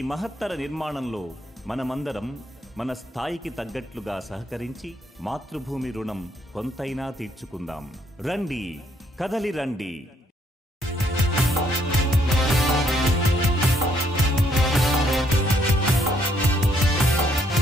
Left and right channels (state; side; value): normal; both; correlation 0.70